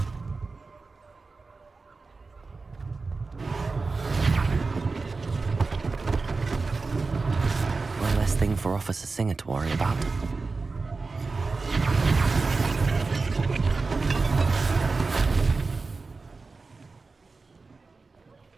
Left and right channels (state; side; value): quieter; left; 4.0 dB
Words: One less thing for Officer Singer to worry about.